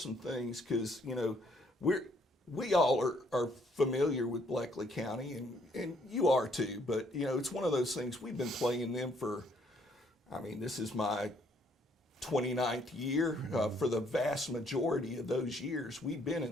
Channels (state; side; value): normal; both; correlation 0.67